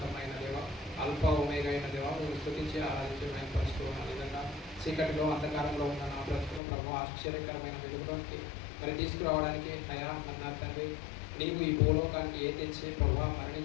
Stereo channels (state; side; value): drops out; right; at 6.6 s